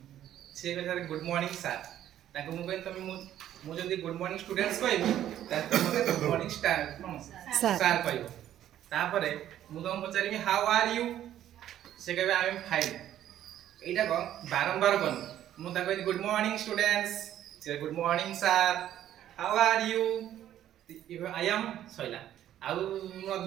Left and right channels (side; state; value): left; quieter; 11.7 dB